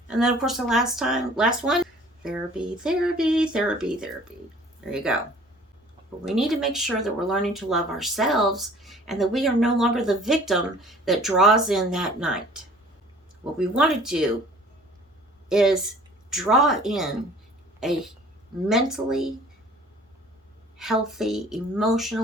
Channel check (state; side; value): normal; both; correlation 0.51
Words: And then, of course, the last one, therapy. There you go. But we need to make sure that we're learning to love ourselves and that we are no longer the victim that draws in that night. What we want to do is draw in a mentally healthy,